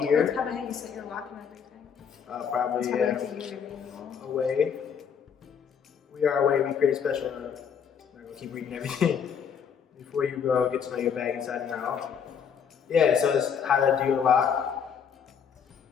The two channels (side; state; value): right; quieter; 7.3 dB